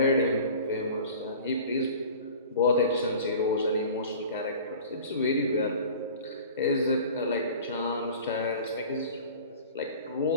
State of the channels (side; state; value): both; inverted; correlation -0.42